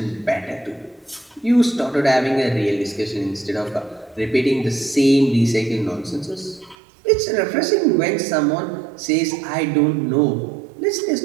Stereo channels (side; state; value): left; drops out; at 6.8 s